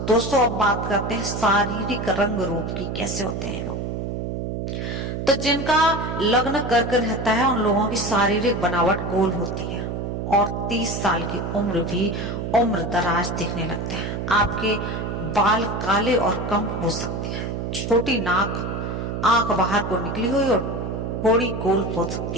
दोस्तों अब बात करते हैं शारीरिक रंग रूप की, कैसे होते हैं लोग। तो जिनका लग्न कर्क रहता है उन लोगों की शारीरिक बनावट गोल होती है और 30 साल की उम्र भी उम्र दराज दिखने लगते हैं। आपके बाल काले और कम हो सकते हैं, छोटी नाक, आंख बाहर को निकली हुई और थोड़ी गोल हो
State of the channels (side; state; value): right; noise; hum, 4 dB below the sound